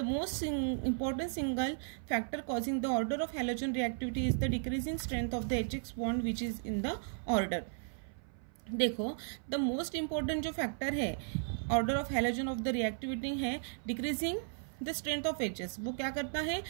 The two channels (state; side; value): silent; left; 54 dB below the other